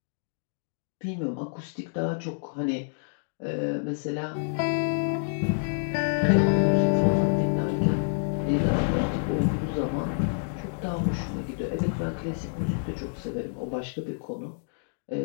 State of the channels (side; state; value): right; silent; digital silence